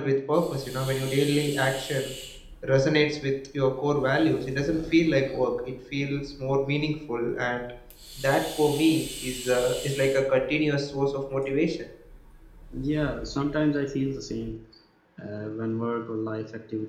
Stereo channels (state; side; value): identical; both; correlation 1.00